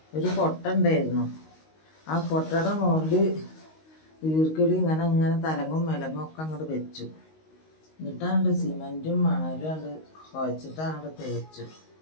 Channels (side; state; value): right; late; 19 ms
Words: ഒരു കൊട്ട ഉണ്ടായിരുന്നു. ആ കൊട്ടയുടെ മുകളിൽ ഈർക്കിളി ഇങ്ങനെ തലങ്ങും വിലങ്ങും ഒക്കെ അങ്ങോട്ട് വെച്ചു. എന്നിട്ടാണ്ട് സിമെൻറ്റും മണലും അങ്ങോട്ട് കുഴച്ചിട്ട് അങ്ങോട്ട് തേച്ചു.